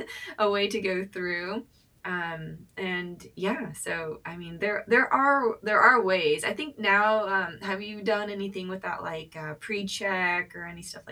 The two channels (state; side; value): identical; both; correlation 1.00